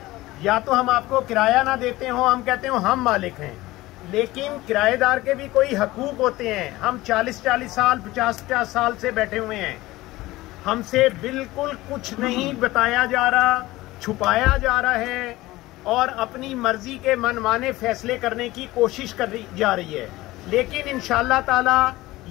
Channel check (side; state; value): right; quieter; 18.4 dB